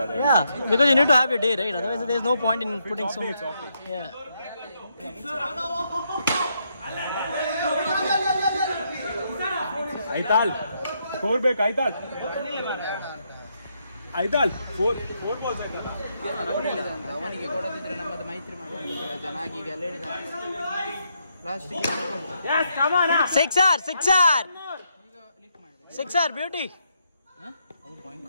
Yeah, because you need to have your day, right? Otherwise, there's no point in putting so much. Yeah. Aital, score back, Aital. Aital, 4 balls Aital. ಅವನಿಗೆ ಕೊಡದಿದ್ರೆ ನಮ್ಮದು ಮೈತ್ರಿ ಮಾಡಿ ಚೆನ್ನಾಗಿ ಈಗ ಎಲ್ಲ ಹೇಳಿದ last Yes, come on. Sixer, beauty.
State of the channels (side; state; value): both; inverted; correlation -0.78